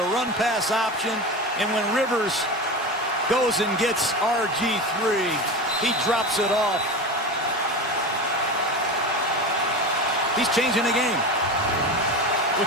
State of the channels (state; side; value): normal; both; correlation 0.25